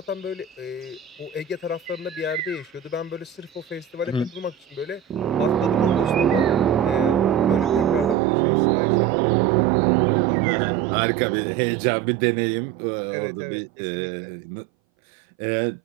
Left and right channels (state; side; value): drops out; left; at 8.2 s